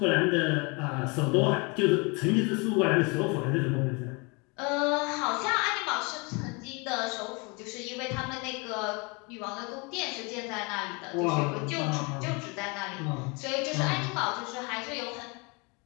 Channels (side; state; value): right; quieter; 29.8 dB